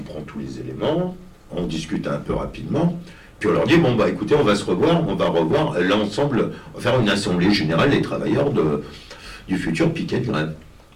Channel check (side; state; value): both; identical; correlation 1.00